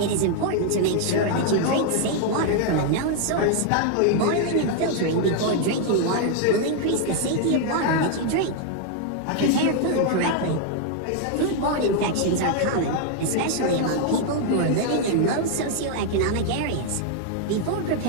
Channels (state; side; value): different; both; correlation 0.00